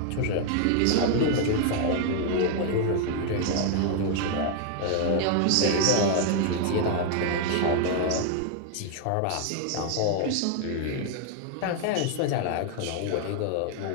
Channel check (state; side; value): different; both; correlation 0.00